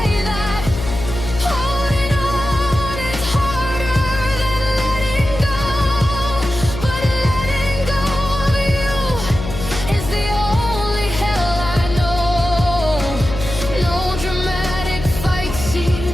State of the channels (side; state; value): left; noise; hum, 8 dB below the sound